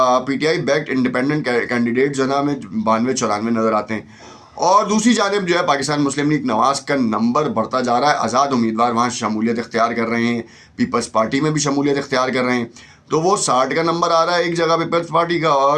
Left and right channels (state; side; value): identical; both; correlation 1.00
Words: P T I backed independent candidate جو ہے نا ہمیں 92-94 نظر آتے ہیں. اور دوسری جانب جو ہے پاکستان مسلم لیگ نواز کا نمبر بڑھتا جا رہا ہے. آزاد امیدوار وہاں شمولیت اختیار کر رہے ہیں، پیپلز پارٹی میں بھی شمولیت اختیار کر رہے ہیں. تو وہ 60 کا نمبر آ رہا ہے ایک جگہ پیپلز پارٹی کا،